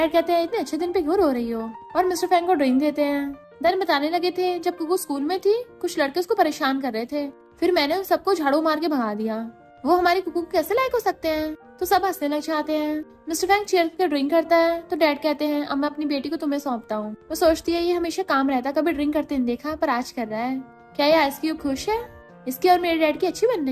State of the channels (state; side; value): identical; both; correlation 1.00